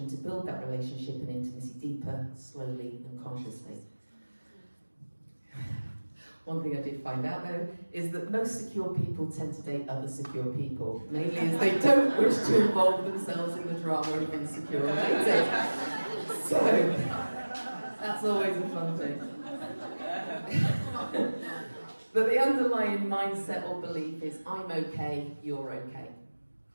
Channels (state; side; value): inverted; both; correlation -1.00